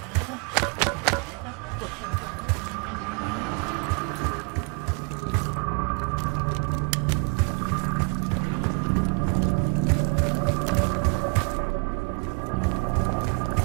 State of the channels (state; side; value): quieter; left; 35.4 dB